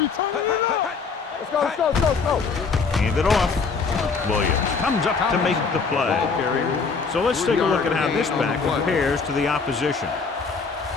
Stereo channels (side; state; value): right; quieter; 5.0 dB